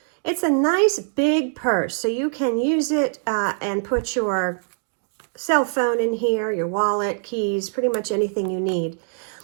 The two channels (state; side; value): silent; left; digital silence